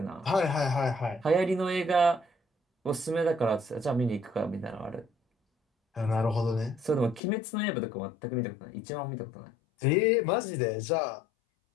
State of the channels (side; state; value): right; drops out; at 7.2 s